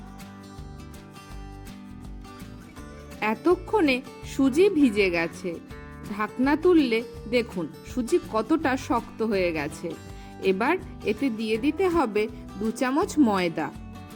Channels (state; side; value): identical; both; correlation 1.00